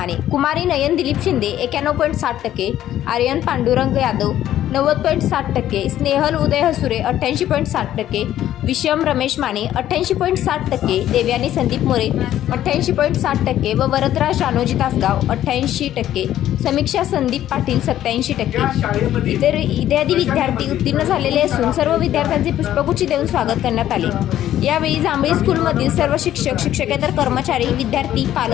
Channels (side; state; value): right; quieter; 12.2 dB